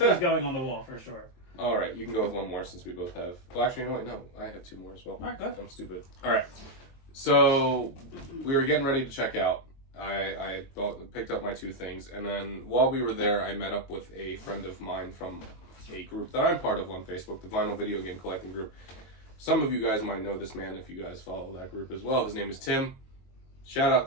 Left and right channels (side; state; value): right; late; 22 ms